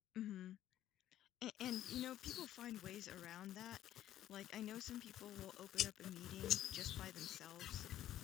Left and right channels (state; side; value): quieter; right; 12.4 dB